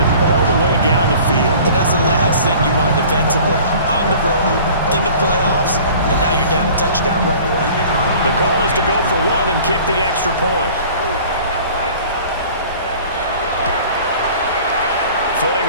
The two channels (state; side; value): inverted; both; correlation -0.46